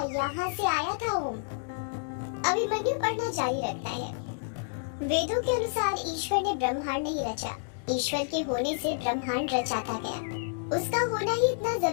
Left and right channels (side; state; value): right; silent; digital silence